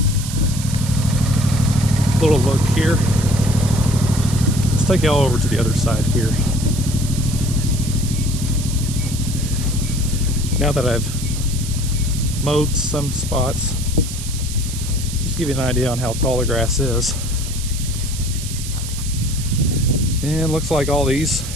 look here. Let's take y'all over to the other side here. Now that I've mowed some spots, just give you an idea on how tall the grass is. And looks like all these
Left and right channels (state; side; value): noise; right; hiss, 9 dB below the sound